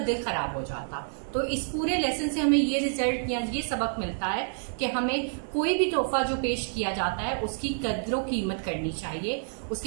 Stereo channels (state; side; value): silent; left; 59 dB below the other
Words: खराब हो जाता। तो इस पूरे लेसन से हमें ये रिजल्ट या ये सबक मिलता है कि हमें कोई भी तोहफा जो पेश किया जाता है उसकी कद्र कीमत करनी चाहिए,